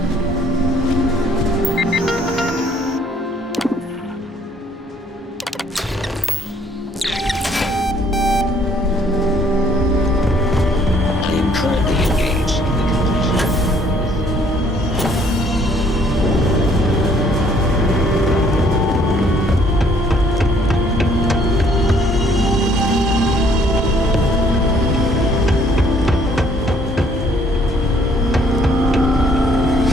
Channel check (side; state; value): both; normal; correlation 0.62